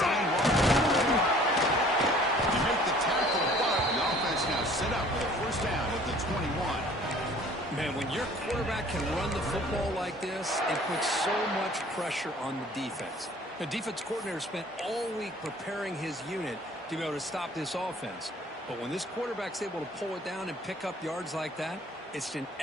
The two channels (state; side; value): normal; both; correlation 0.52